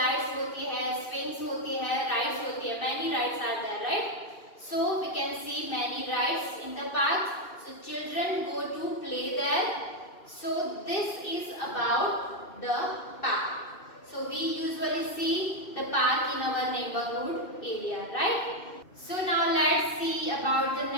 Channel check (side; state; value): right; late; 2.6 ms